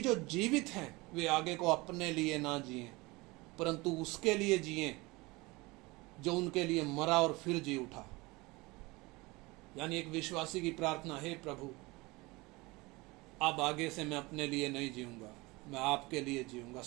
जो जीवित हैं वे आगे को अपने लिए ना जिएं, परंतु उसके लिए जिएं जो उनके लिए मरा और फिर जी उठा। यानी एक विश्वासी की प्रार्थना, हे प्रभु, अब आगे से मैं अपने लिए नहीं जीऊंगा, मैं आपके लिए जीऊंगा।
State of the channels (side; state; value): left; quieter; 23.2 dB